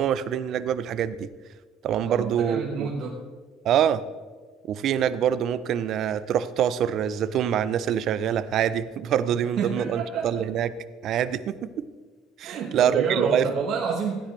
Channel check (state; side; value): quieter; left; 8.3 dB